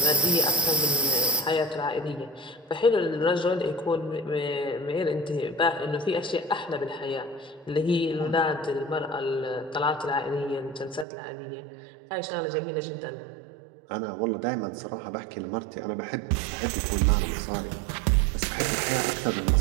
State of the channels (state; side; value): drops out; left; at 11.1 s